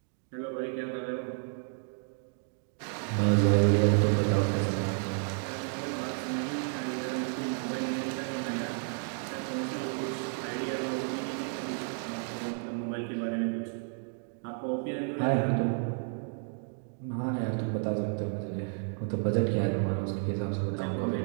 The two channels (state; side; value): silent; left; 57 dB below the other